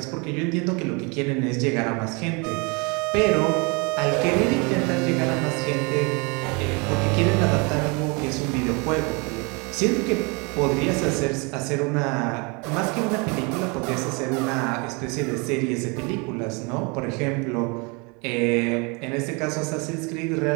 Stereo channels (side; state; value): left; quieter; 30.5 dB